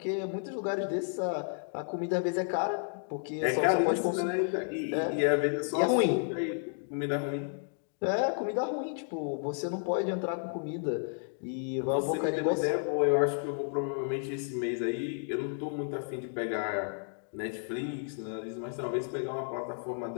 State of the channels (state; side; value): silent; right; digital silence